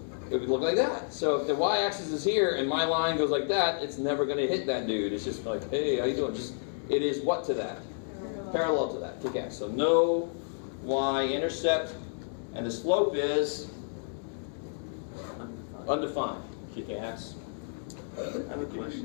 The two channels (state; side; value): silent; right; digital silence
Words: It would look like that. So if the y-axis is here and my line goes like that, it's never going to hit that dude. It's just like, hey, how you doing? It is what to that? Parallel to that. Kick ass. So no y-intercept, and the slope is undefined. Kick ass. I have a